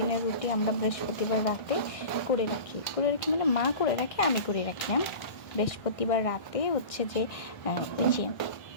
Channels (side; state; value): right; late; 1.6 ms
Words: রুটি আমরা বৃহস্পতিবার রাতে করে রাখি মানে মা করে রাখে, আমি করে রাখি না। বৃহস্পতিবার রাতে হচ্ছে যে ওই যে